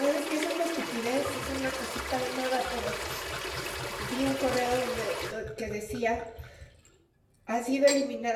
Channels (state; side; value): identical; both; correlation 1.00